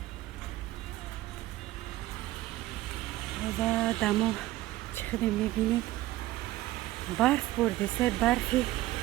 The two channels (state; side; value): quieter; left; 16.4 dB